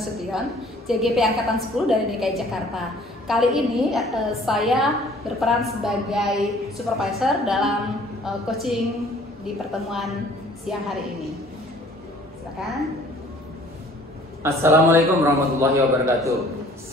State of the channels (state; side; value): normal; both; correlation 0.54